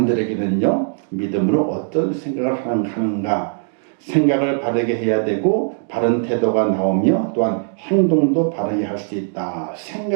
믿음으로 어떤 생각을 하는가, 생각을 바르게 해야 되고 바른 태도가 나오며 또한 행동도 바르게 할 수 있다.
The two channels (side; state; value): left; silent; digital silence